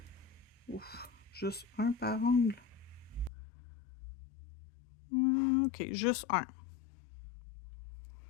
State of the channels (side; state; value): right; drops out; at 3.3 s